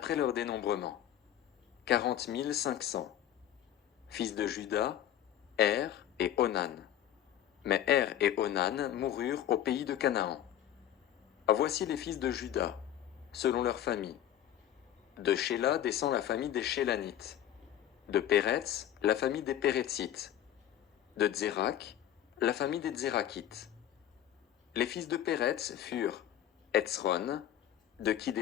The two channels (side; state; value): right; quieter; 11.2 dB